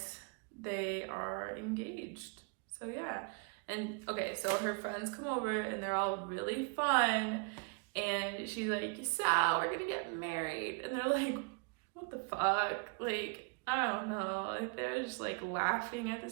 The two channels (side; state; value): left; quieter; 35.5 dB